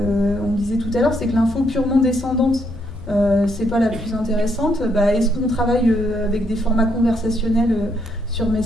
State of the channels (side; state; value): left; noise; hum, 21 dB below the sound